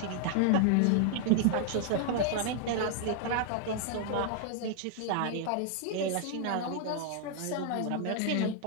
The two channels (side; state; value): both; different; correlation 0.00